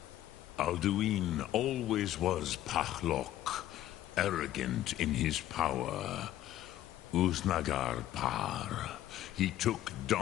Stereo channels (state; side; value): quieter; right; 13.3 dB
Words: Alduin always was Pachlok, arrogant in his power. Uznagar Par. He took